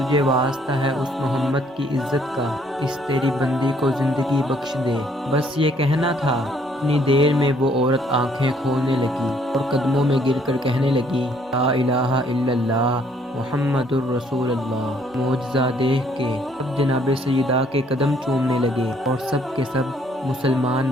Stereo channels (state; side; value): normal; both; correlation 0.65